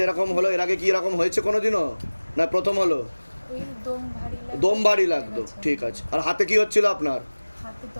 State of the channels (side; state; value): both; inverted; correlation -1.00